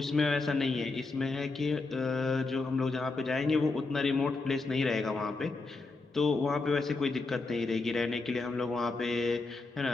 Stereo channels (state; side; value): quieter; right; 3.6 dB